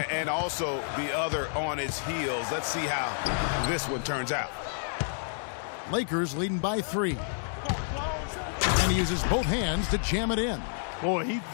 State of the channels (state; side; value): silent; right; 58 dB below the other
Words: And also the other on its heels. Let's see how this one turns out. Lakers leading by 3. And he uses both hands to jam it in. Boy, he